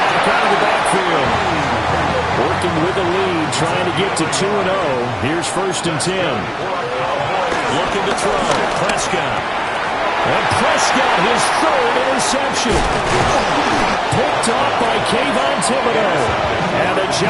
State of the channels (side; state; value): both; identical; correlation 1.00